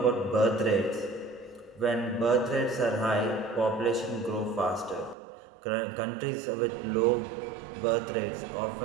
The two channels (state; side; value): drops out; left; at 5.2 s